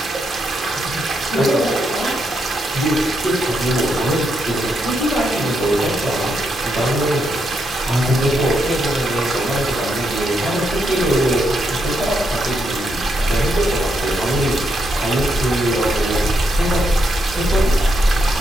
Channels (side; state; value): both; normal; correlation 0.80